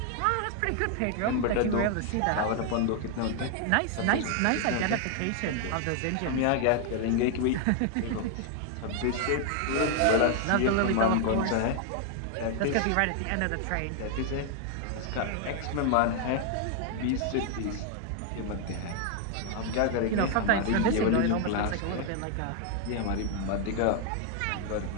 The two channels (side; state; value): both; different; correlation 0.00